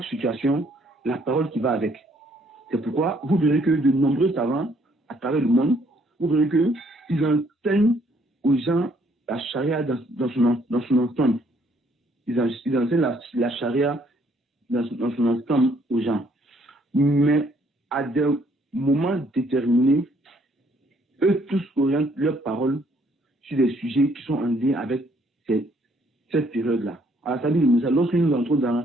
situation, la parole qui va avec. C'est pourquoi vous verrez que de nombreux savants à travers le monde, vous verrez qu'ils enseignent aux gens la charia dans son ensemble. Ils enseignent la charia dans son ensemble aux gens. Mais à des moments déterminés, eux tous orientent leurs paroles sur des sujets qui sont en lien avec cette période-là. Alors, ça veut dire, lorsque nous entrons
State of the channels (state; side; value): normal; both; correlation 0.66